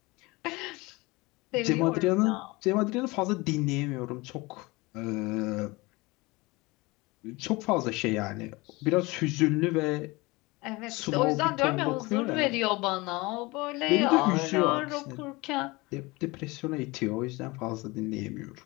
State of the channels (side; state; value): right; quieter; 23.4 dB